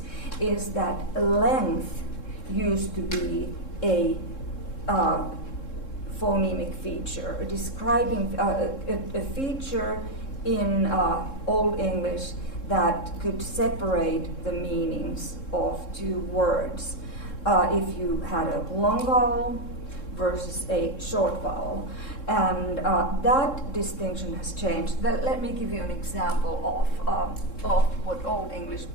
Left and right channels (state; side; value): late; right; 3.7 ms